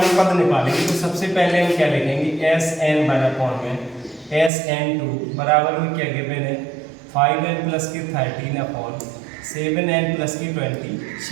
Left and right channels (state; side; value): drops out; left; at 4.5 s